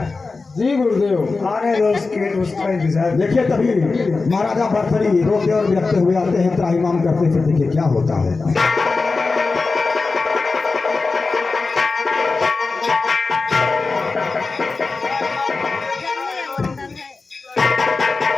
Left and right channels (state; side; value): quieter; right; 4.0 dB